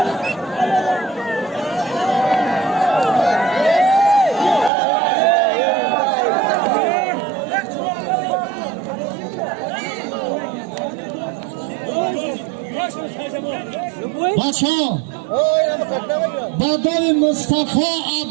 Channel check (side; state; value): left; drops out; at 4.7 s